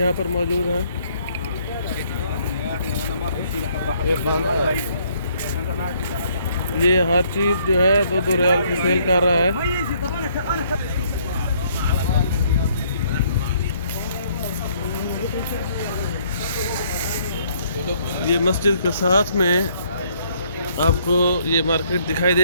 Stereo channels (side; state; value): both; inverted; correlation -0.65